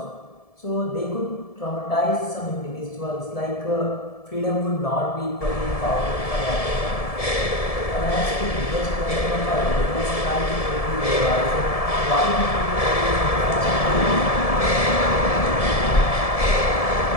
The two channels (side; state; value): right; late; 1.7 ms